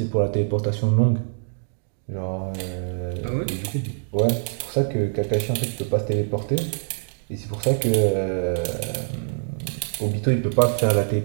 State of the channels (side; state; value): left; silent; digital silence